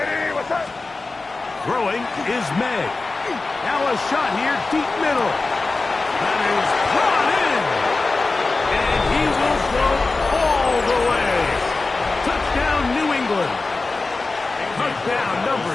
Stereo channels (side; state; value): right; quieter; 3.6 dB